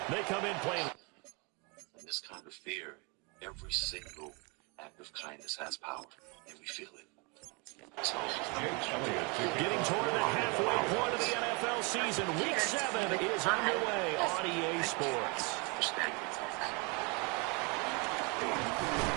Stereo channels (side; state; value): left; quieter; 31.2 dB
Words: they come in playing. In this kind of fear, every single act of kindness has power, and we feel it. So, getting toward the halfway point of the NFL season, Week 7 is underway on EA Sports.